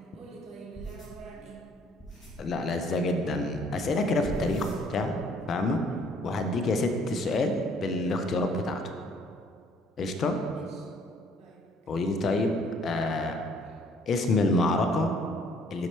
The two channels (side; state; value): both; normal; correlation 0.60